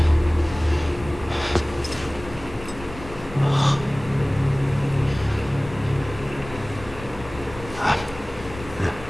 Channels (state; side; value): noise; left; rumble, 15 dB below the sound